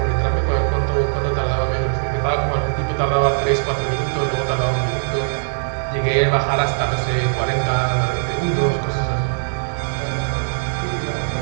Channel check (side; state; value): left; silent; digital silence